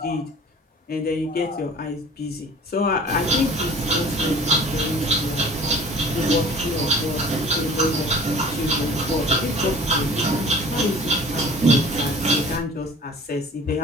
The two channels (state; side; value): normal; both; correlation 0.45